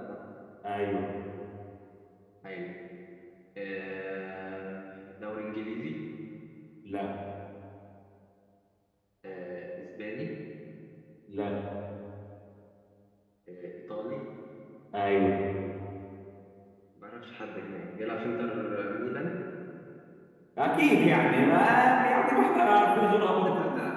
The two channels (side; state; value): both; identical; correlation 1.00